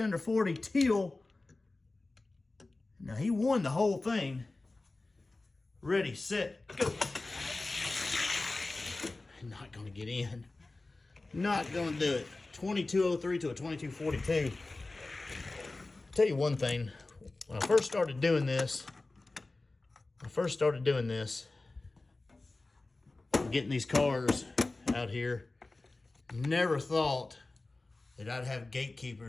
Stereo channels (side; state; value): right; quieter; 3.2 dB